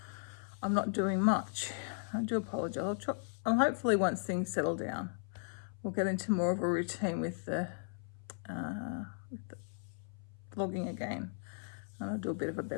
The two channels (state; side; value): silent; right; 53 dB below the other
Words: I'm not doing much. I do apologise. I'll hopefully once things settle down, we'll get into more of a routine with the vlogging again. And I'll do a bit of a